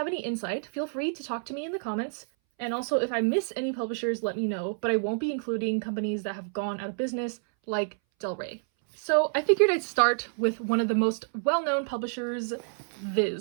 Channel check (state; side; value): silent; left; 59 dB below the other